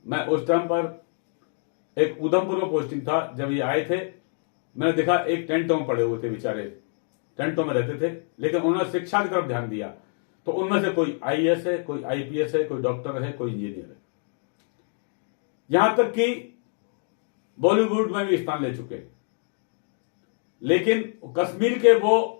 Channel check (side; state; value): right; silent; 58 dB below the other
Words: मैं उस टाइम पर एक उधमपुर में पोस्टिंग था, जब ये आए थे मैंने देखा एक टेंटों में पड़े हुए थे, बेचारे टेंटों में रहते थे, लेकिन उन्होंने शिक्षा की तरफ ध्यान दिया। तो उनमें से कोई आईएएस है, कोई आईपीएस है, कोई डॉक्टर है, कोई इंजीनियर है, यहां तक कि बॉलीवुड में भी स्थान ले चुके। लेकिन कश्मीर के